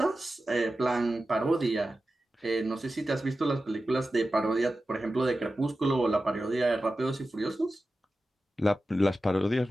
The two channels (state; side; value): normal; both; correlation 0.93